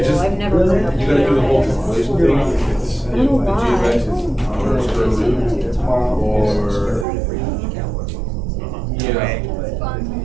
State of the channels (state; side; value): drops out; left; at 7.1 s